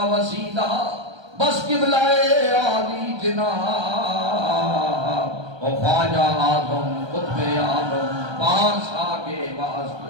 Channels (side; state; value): left; late; 1.3 ms